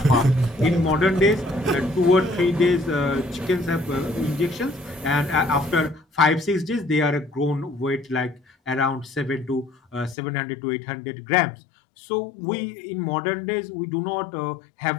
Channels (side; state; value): right; drops out; at 10.2 s